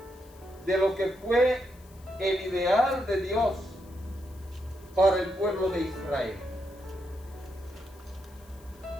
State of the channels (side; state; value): left; noise; hiss, 26 dB below the sound